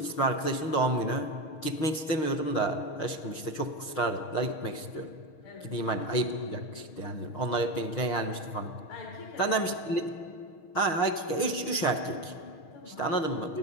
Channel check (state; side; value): late; right; 6.4 ms